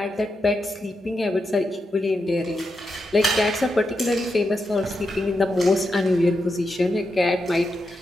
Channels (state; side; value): normal; both; correlation 0.86